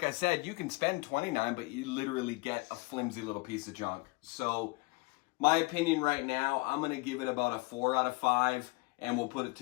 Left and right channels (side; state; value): right; quieter; 26.3 dB